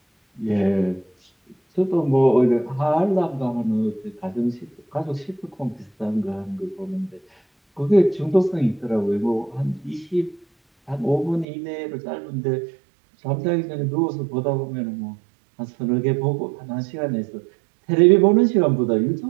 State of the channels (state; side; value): drops out; left; at 11.5 s